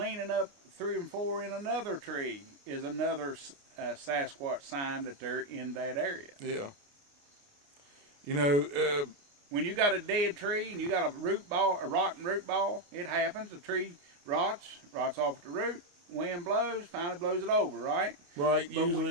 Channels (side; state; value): left; late; 29 ms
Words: up 3 and 4 in another tree is another Sasquatch sign that they're in that area. Yeah. You know, when you got a dead tree and you got a rotten root ball, it happens. The tree rots off at the root. Wind blows, finally blows it over, right? right,